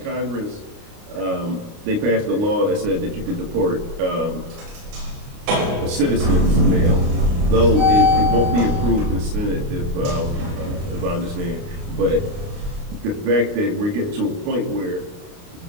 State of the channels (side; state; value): left; late; 29 ms